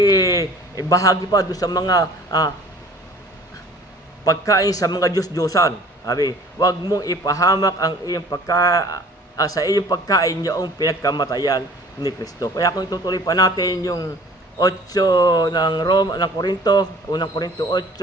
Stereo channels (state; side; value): normal; both; correlation 0.49